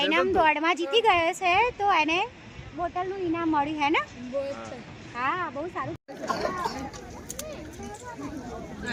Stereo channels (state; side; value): identical; both; correlation 1.00